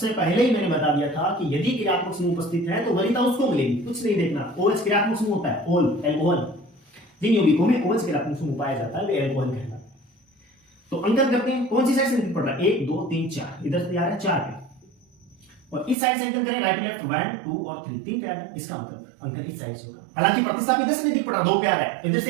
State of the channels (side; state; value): left; drops out; at 16.0 s